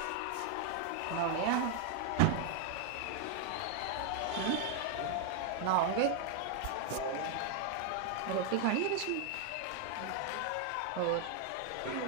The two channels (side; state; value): both; different; correlation 0.00